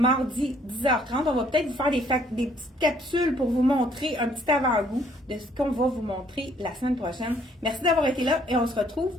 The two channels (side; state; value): both; normal; correlation 0.64